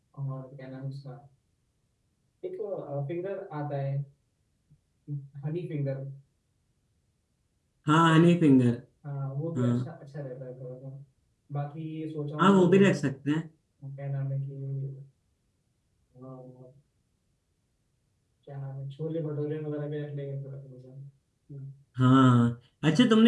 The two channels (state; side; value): identical; both; correlation 1.00